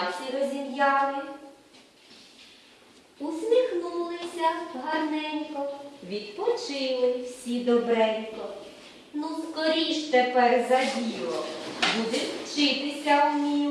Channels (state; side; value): identical; both; correlation 1.00